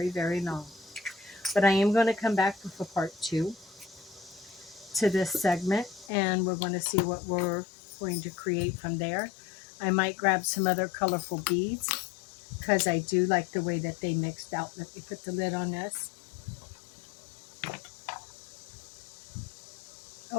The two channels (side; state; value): right; drops out; at 6.1 s